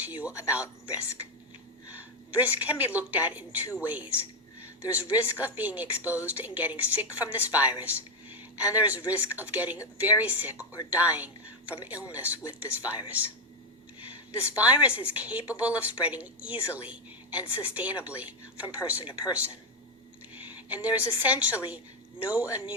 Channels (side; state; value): both; normal; correlation 0.06